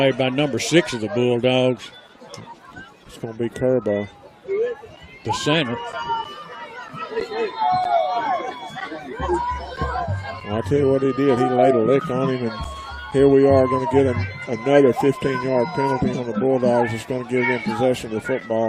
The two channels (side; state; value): both; identical; correlation 1.00